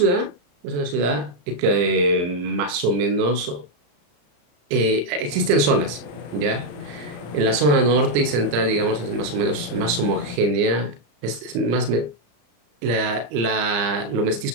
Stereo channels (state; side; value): late; left; 34 ms